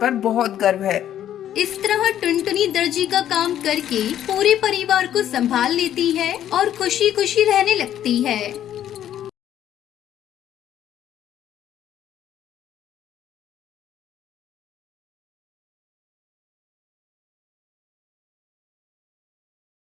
बहुत गर्व है। इस तरह टुनटुनी दर्जी का काम करके पूरे परिवार को संभाल लेती है और खुशी खुशी रहने लगती है।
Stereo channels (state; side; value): quieter; right; 11.1 dB